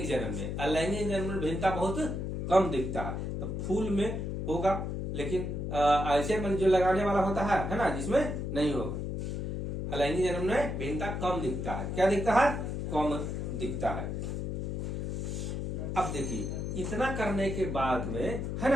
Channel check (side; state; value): left; noise; hum, 3 dB below the sound